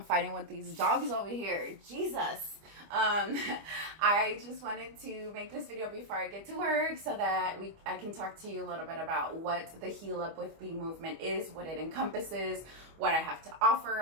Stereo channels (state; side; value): late; left; 25 ms